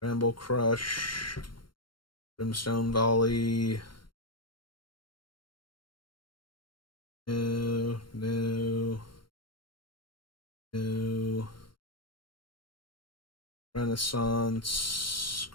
Bramble Crush. Brimstone Volley. No. No. Renaissance.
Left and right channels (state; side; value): late; right; 0.72 ms